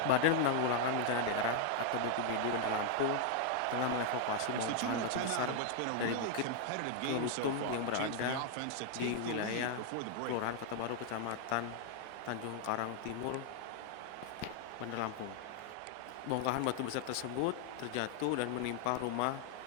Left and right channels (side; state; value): both; different; correlation 0.00